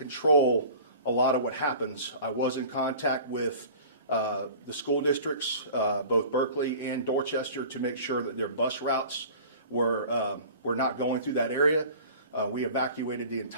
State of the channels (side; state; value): both; inverted; correlation -0.42